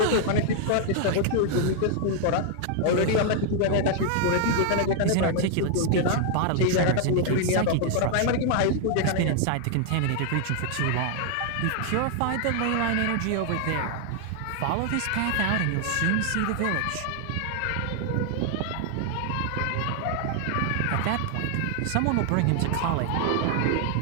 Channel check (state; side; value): different; both; correlation 0.00